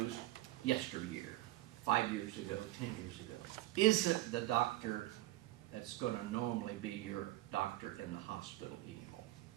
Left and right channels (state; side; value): quieter; left; 16.4 dB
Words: yesteryear, 5 years ago, 10 years ago, isn't the doctor that's going to normally be your doctor in the hospital anymore.